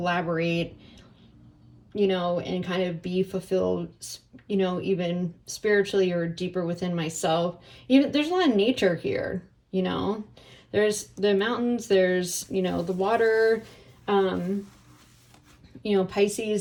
and kind of be fulfilled, even spiritually or deeper within myself. Even there's a lot of nature here, there's the mountains, there's, the water.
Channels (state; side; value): identical; both; correlation 1.00